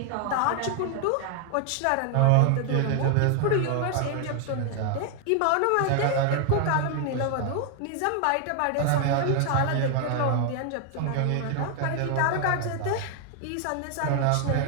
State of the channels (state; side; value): different; both; correlation 0.00